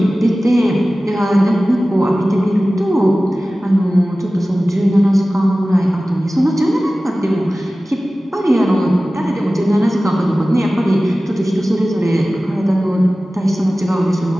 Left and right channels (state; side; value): normal; both; correlation 0.96